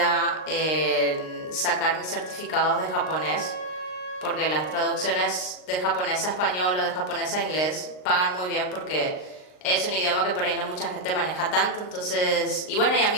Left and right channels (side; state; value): right; late; 39 ms